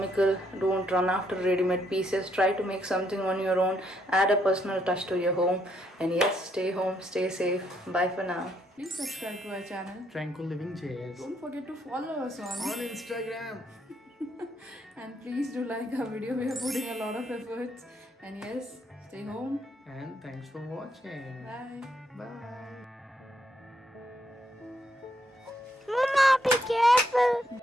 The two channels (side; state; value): both; normal; correlation 0.74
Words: Don't run after ready-made pieces. Try to make something on your own. Add a personal touch to your home. And yes, stay home, stay safe. Bye for now. Please subscribe to our channel TranquillivingJS Don't forget to follow us on Instagram. and please do like our video. We are putting a lot of efforts. And yes, stay home. And thanks for watching. Bye. Bye. Mama, be careful.